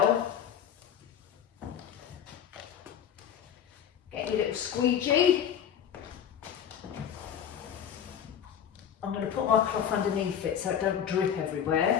Get your little squeegee. I'm going to put my cloth underneath it so it don't drip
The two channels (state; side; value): quieter; right; 8.9 dB